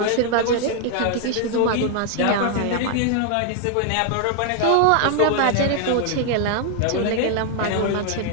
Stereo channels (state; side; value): different; both; correlation 0.00